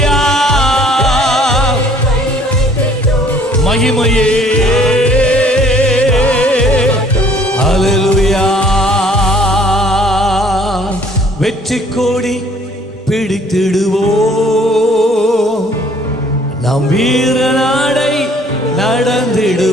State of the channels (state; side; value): normal; both; correlation 0.58